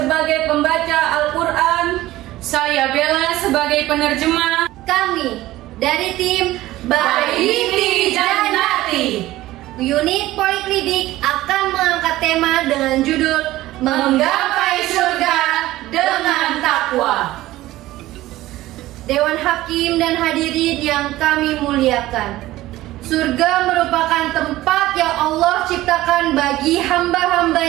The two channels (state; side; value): quieter; left; 16.4 dB